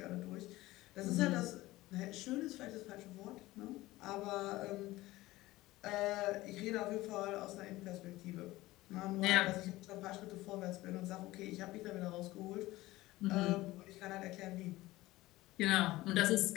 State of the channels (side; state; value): right; quieter; 18.2 dB